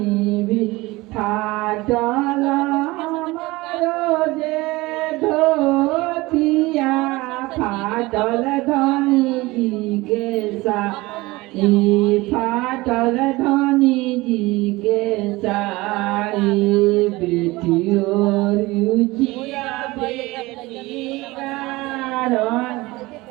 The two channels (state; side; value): quieter; left; 21.1 dB